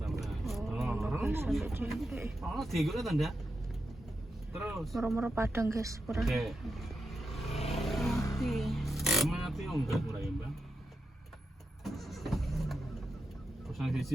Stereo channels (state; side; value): normal; both; correlation 0.87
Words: Oh, tiga lah tanda. Terus. Moro-moro padang guys, kurang. Oke. Mati. Mati enggak kurang ya, Bang. Pasang